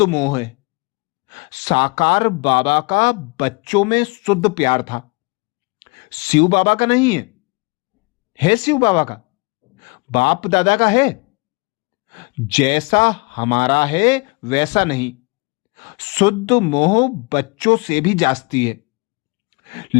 मोह है। साकार बाबा का बच्चों में शुद्ध प्यार था, शिव बाबा का नहीं है। है शिव बाबा का, बाप दादा का है। जैसा हमारा है वैसा नहीं। शुद्ध मोह बच्चों से भी जास्ती है,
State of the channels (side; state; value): right; quieter; 29.0 dB